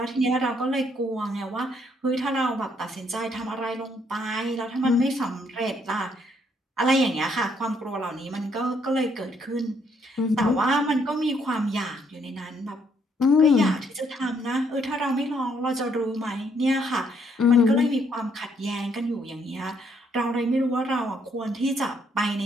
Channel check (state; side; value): normal; both; correlation 0.70